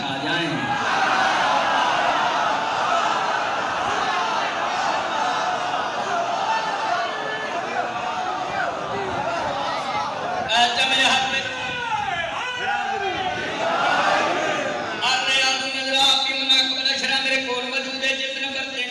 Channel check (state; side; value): identical; both; correlation 1.00